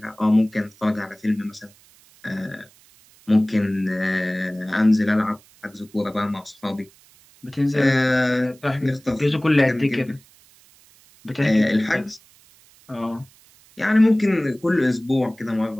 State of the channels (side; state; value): right; noise; hiss, 28 dB below the sound